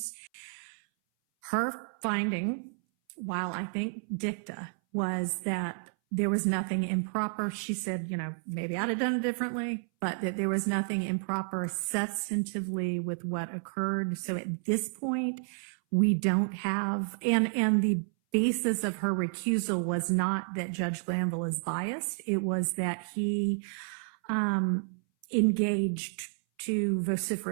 Her finding, while I think dicta, was that there was nothing improper. She said, you know, maybe I'd have done it differently, but that there was nothing improper substantively with what occurred. So at this point, we don't have, and the basis of her recusal was not that Judge Glanville is biased. It was that he engaged too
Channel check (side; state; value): left; silent; 57 dB below the other